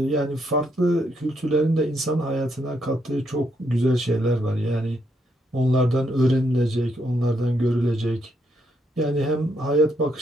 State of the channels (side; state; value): both; normal; correlation 0.76